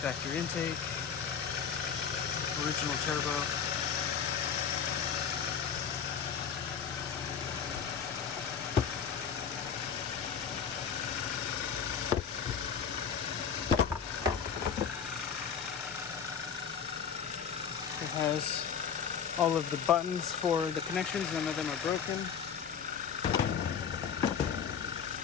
Factory intake. Original turbo. It has all of the buttons for the connections, none of them are broken.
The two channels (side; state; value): right; quieter; 7.2 dB